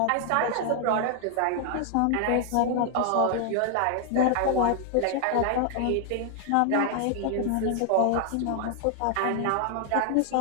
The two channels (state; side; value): different; both; correlation 0.00